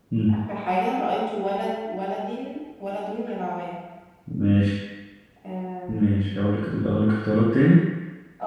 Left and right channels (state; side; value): identical; both; correlation 1.00